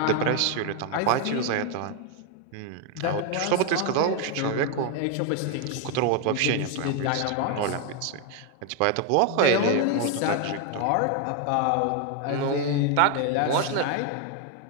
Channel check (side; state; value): both; different; correlation 0.01